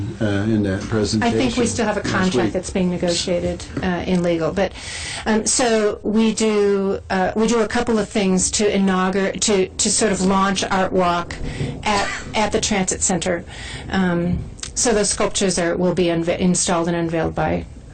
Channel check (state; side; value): identical; both; correlation 1.00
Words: in that presentation. I think we still have a contract that's being negotiated in legal. But so we do a couple of things to inaugurate, to sort of launch Art Walk at the transit center. So those sculptures will be installed and unveiled by.